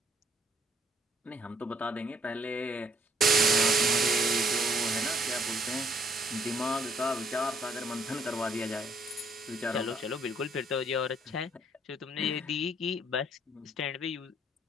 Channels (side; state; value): both; normal; correlation 0.66